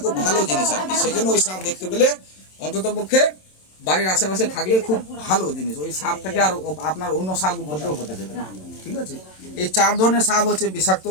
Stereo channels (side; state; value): right; late; 27 ms